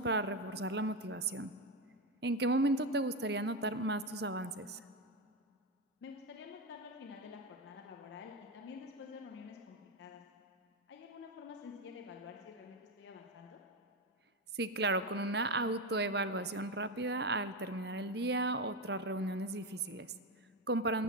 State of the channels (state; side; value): normal; both; correlation 0.12